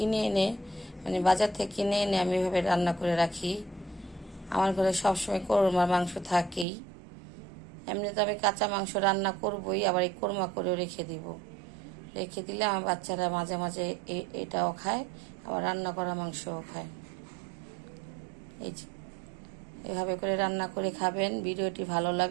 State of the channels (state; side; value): drops out; left; at 6.7 s